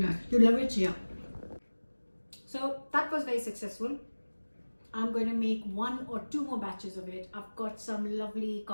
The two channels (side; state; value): both; inverted; correlation -1.00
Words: You love it, yeah. So that was very successful. I'm going to make 1 or 2 more batches of it. I've got some lovely